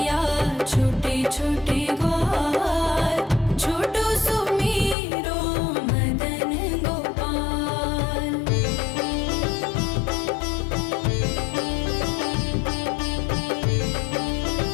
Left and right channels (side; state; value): right; drops out; at 5.0 s